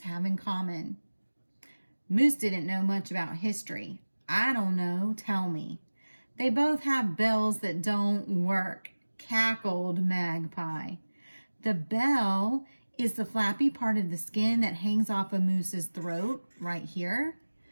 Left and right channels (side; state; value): both; inverted; correlation -1.00